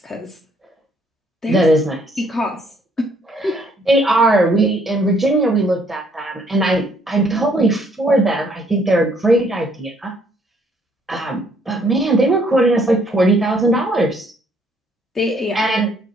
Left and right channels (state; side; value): normal; both; correlation 0.66